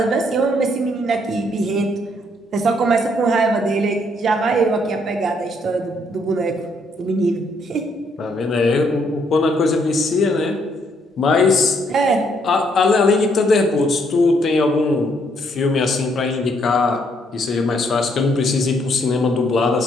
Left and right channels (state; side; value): normal; both; correlation 0.70